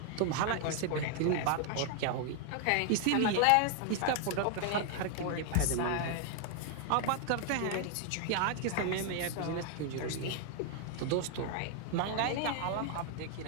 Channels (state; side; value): different; both; correlation 0.00